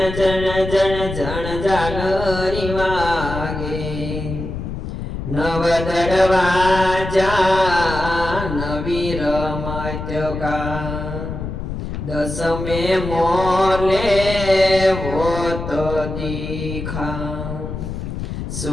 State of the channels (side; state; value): left; noise; rumble, 6 dB below the sound